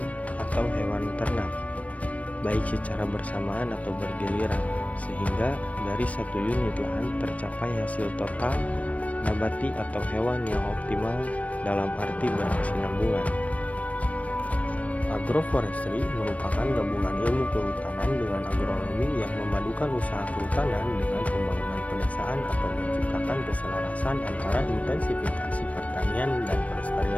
atau hewan ternak, baik secara bersamaan atau bergiliran, sehingga dari satu unit lahan tercapai hasil total nabati atau hewan yang optimal dalam arti berkesinambungan. Agroforestry merupakan gabungan ilmu kehutanan dengan agronomi yang memadukan usaha kehutanan dengan pembangunan pedesaan atau menciptakan keselarasan antara intensifikasi pertanian dan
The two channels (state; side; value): late; right; 0.067 ms